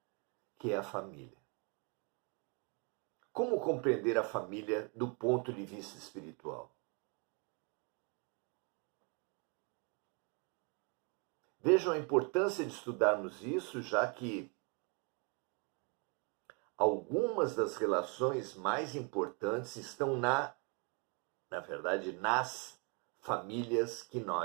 que é a família. Como compreender a família do ponto de vista espiritual? Vejam a importância de estudarmos isso, já que algumas das relações mais importantes estão na verdade, nas famílias que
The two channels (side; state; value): left; quieter; 35.0 dB